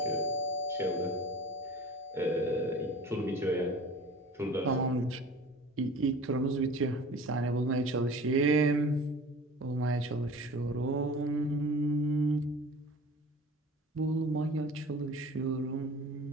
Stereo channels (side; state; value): both; normal; correlation 0.41